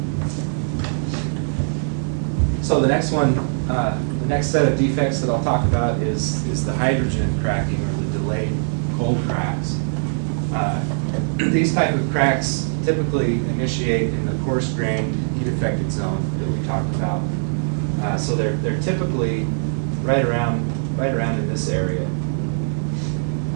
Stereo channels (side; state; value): left; silent; 65 dB below the other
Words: So the next one, the next set of defects that I'll talk about is the hydrogen cracking or the delayed cold cracks. These type of cracks typically initiate in the coarse-grained, heat-affected zone that we talked about. So they're typically right around in this area.